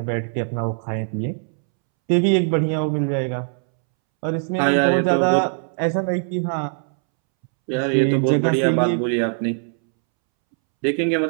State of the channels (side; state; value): left; silent; 65 dB below the other